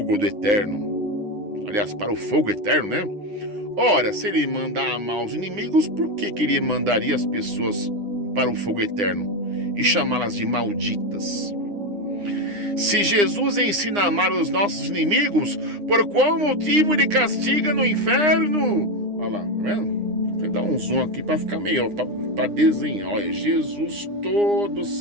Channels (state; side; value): late; left; 9.8 ms